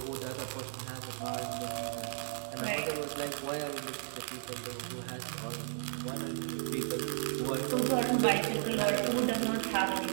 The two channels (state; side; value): silent; left; digital silence